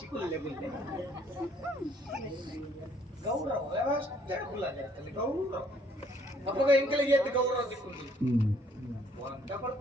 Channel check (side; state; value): both; normal; correlation 0.64